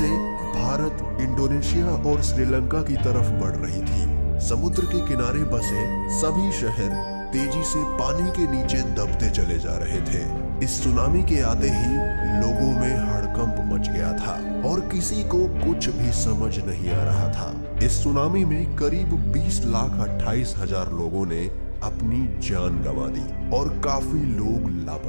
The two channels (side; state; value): both; inverted; correlation -1.00